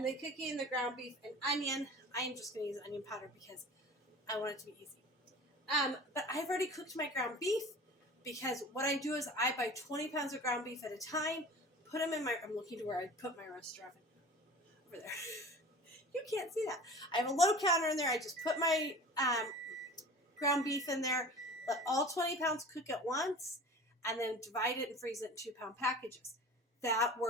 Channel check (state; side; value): normal; both; correlation 0.39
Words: then cooking the ground beef and onion. I am just going to use onion powder because I want it to be easy. But I've already cooked my ground beef because what I do is I buy 20 pounds of ground beef at a time, put them in my, I'm looking to where I put my roaster oven. Over there. You can't see that. I have a low counter in there. I just put my ground beef in there, let all 20 pounds cook at once, and then divide it and freeze it in 2-pound packages. That